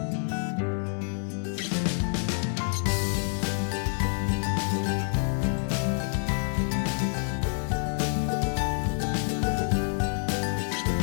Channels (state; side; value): silent; right; 59 dB below the other